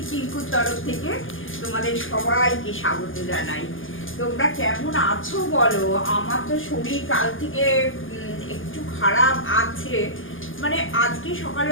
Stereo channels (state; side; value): late; right; 0.58 ms